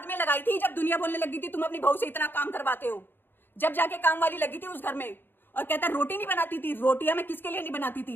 में लगाई थी, जब दुनिया बोलने लगी थी तुम अपनी बहू से इतना काम करवाते हो, जब जाके काम वाली लगी थी उस घर में। और कहता है रोटी नहीं बनाती थी। रोटियां मैं किसके लिए नहीं बनाती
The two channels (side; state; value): right; late; 0.098 ms